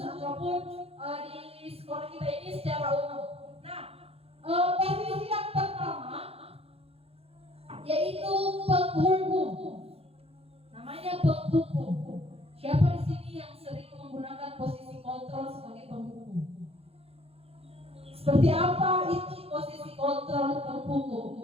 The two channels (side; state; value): left; late; 0.29 ms